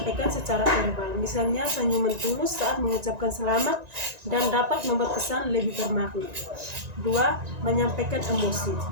secara verbal. Misalnya senyuman tulus saat mengucapkan selamat dan dapat membuat pesan lebih bermakna. 2. Menyampaikan emosi.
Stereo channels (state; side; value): late; left; 1.9 ms